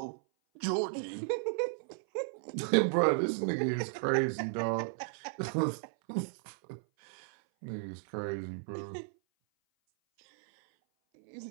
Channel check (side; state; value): left; silent; 55 dB below the other